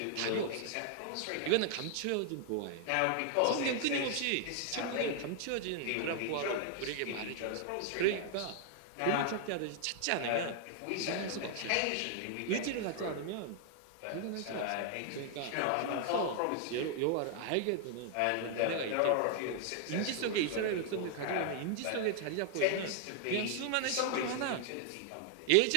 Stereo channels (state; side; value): different; both; correlation 0.00